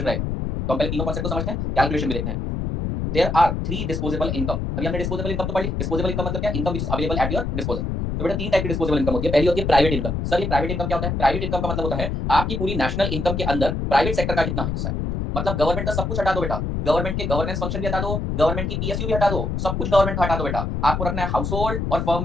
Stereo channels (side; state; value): left; noise; rumble, 2 dB below the sound